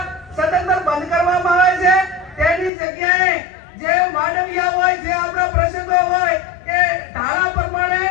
સદંતર બંધ કરવામાં આવે છે. તેની જગ્યાએ જે માંડવિયા હોય, જે આપણા પ્રસંગો હોય એ ધારા પ્રમાણે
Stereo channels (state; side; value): drops out; right; at 2.7 s